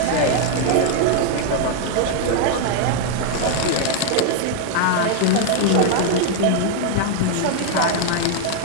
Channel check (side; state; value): both; different; correlation 0.00